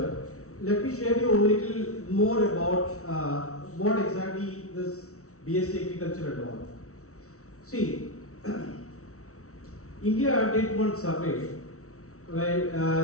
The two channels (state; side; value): late; right; 0.64 ms